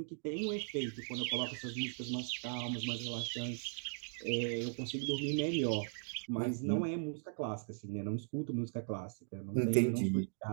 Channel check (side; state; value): left; silent; 52 dB below the other